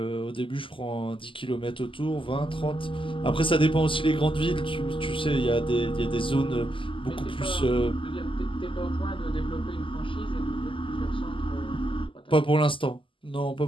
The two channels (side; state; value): right; late; 0.25 ms